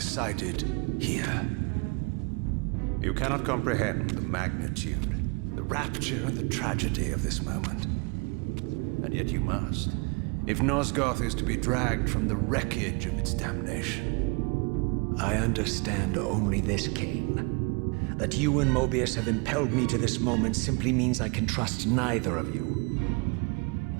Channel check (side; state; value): left; quieter; 31.2 dB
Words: here. You cannot comprehend the magnitude, the rapture and the tragedy of this moment. And yet you must, if Nosgoth is to be dragged from the wreckage of its damnation. I understand only this, Kain. That you and Mobius have impelled me to this moment simply means I can trust neither of you.